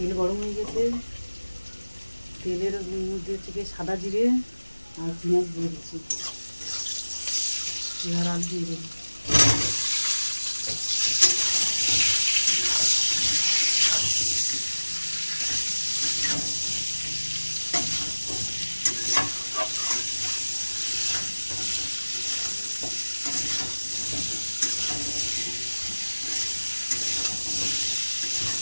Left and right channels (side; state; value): both; inverted; correlation -1.00